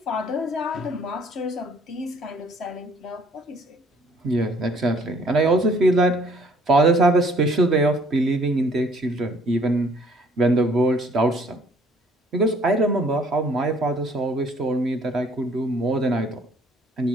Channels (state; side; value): normal; both; correlation 0.59